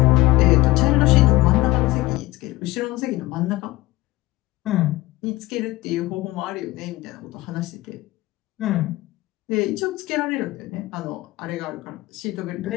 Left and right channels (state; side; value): quieter; right; 18.8 dB